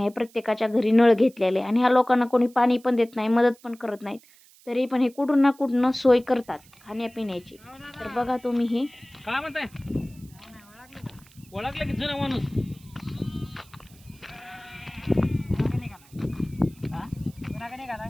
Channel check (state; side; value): noise; right; hiss, 26 dB below the sound